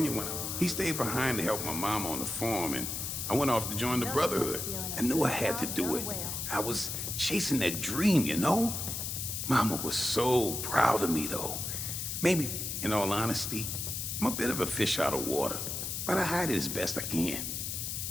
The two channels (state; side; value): noise; left; hiss, 3 dB below the sound